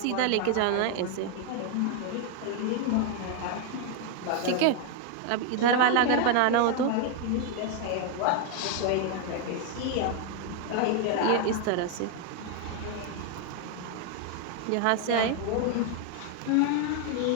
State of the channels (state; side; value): different; both; correlation 0.01